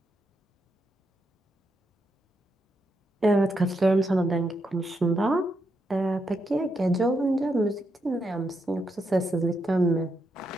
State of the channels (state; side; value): normal; both; correlation 0.81